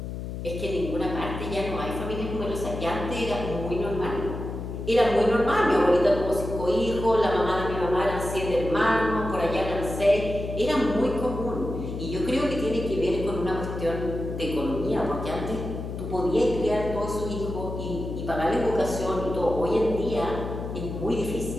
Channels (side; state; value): left; noise; hum, 6 dB below the sound